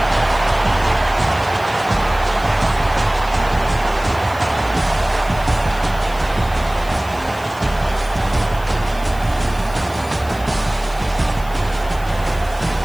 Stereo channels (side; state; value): left; noise; hiss, 20 dB below the sound